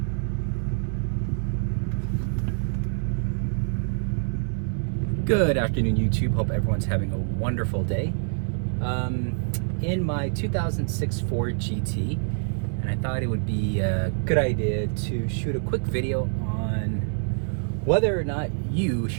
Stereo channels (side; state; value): left; silent; digital silence